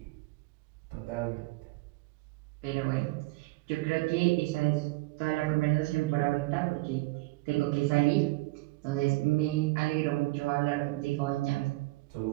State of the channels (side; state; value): left; quieter; 21.7 dB